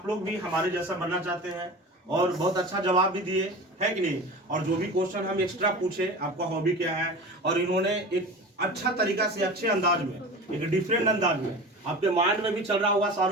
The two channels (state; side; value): normal; both; correlation 0.33